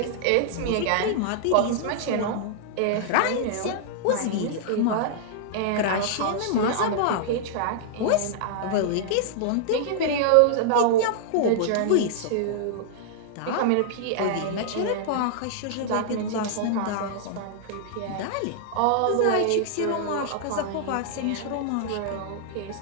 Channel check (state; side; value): different; both; correlation -0.01